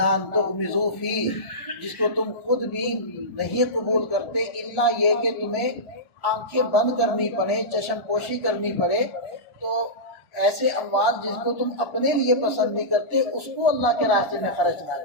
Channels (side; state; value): right; late; 1.1 ms